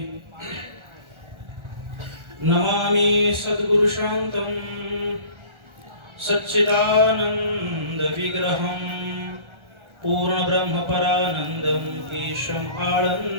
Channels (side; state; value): left; late; 1.4 ms